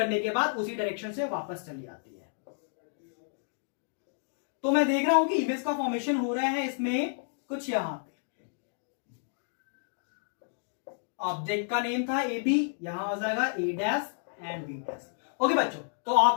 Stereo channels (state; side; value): silent; right; digital silence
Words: के बाद उसी डायरेक्शन से वापस चली आती है। तो मैं देख रहा हूं कि इमेज का फॉर्मेशन हो रहा है इसमें कुछ यहां पे, ऑब्जेक्ट का नेम था ए बी, यहां हो जाएगा A dash and B dash. Okay बच्चों, तो